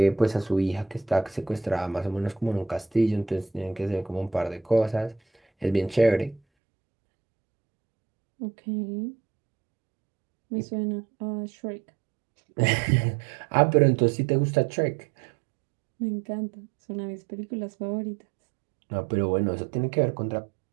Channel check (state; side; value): drops out; left; at 6.4 s